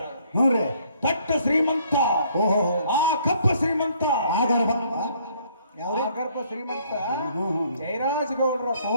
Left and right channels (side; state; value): both; inverted; correlation -0.63